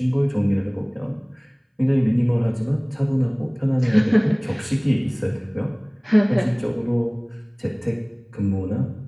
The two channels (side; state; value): both; identical; correlation 1.00